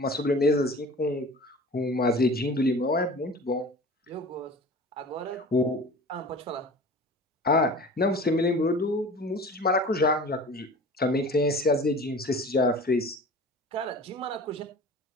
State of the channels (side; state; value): both; normal; correlation 0.40